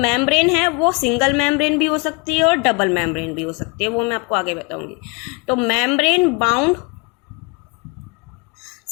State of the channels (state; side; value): quieter; right; 30.4 dB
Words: है वो सिंगल मेम्ब्रेन भी हो सकती है और डबल मेम्ब्रेन भी हो सकती है, वो मैं आपको आगे बताऊंगी। तो membrane bound